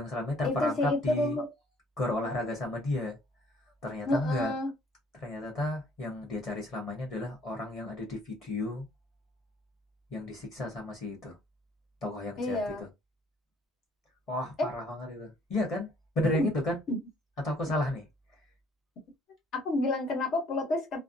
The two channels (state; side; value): normal; both; correlation 0.61